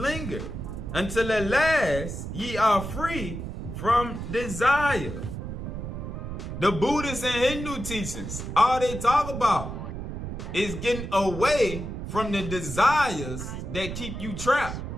until at last ye are free from desire. The Buddhist and Hindu teachings, all they talk about is getting away from the desires that keep you trapped.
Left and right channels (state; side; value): noise; right; rumble, 7 dB below the sound